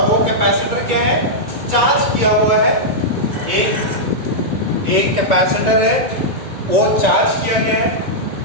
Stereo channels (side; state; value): left; late; 1.9 ms